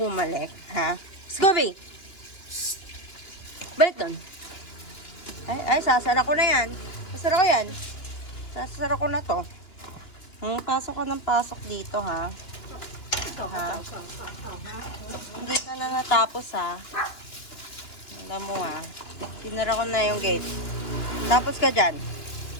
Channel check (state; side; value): late; right; 2.9 ms